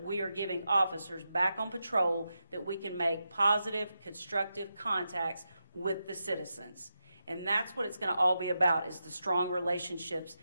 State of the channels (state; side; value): inverted; both; correlation -0.87